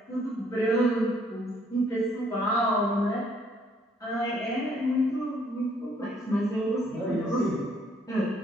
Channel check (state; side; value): normal; both; correlation 0.65